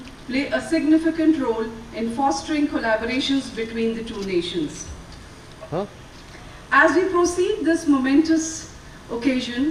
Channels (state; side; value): identical; both; correlation 1.00